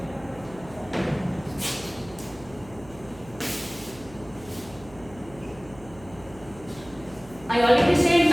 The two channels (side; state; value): right; noise; hum, 20 dB below the sound